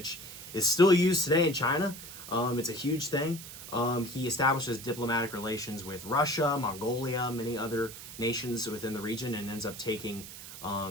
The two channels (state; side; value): noise; right; hiss, 13 dB below the sound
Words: is still used today in China. It's a huge thing. He establishes diplomatic relations with Russia, Mongolia, many other nations within the region, and ends up taking